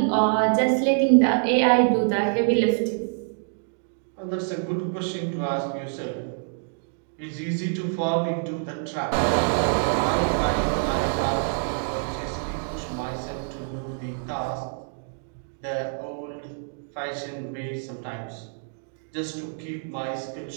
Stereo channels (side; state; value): left; silent; digital silence